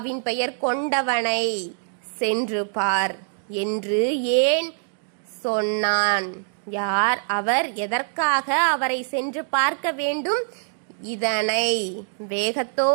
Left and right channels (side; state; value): left; silent; digital silence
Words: பெயர் கொண்டவனை சென்று பார் என்று ஏன் சொன்னான்? யார் அவர்? எதற்காக அவரை சென்று பார்க்க வேண்டும்? இதனை